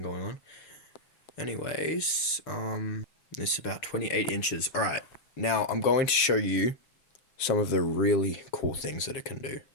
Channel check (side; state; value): right; late; 7.4 ms